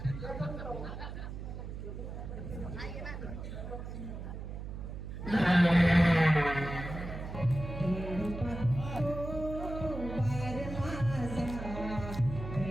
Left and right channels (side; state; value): right; noise; hum, 8 dB below the sound